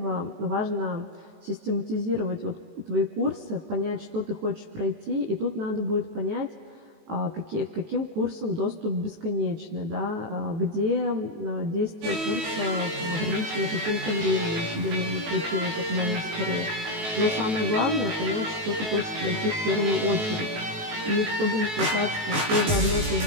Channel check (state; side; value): late; left; 19 ms